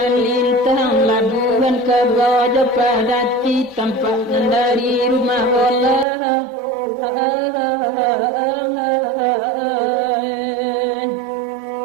labuhan ke Gajah Padati tampak dari rumah Allah.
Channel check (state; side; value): drops out; left; at 6.1 s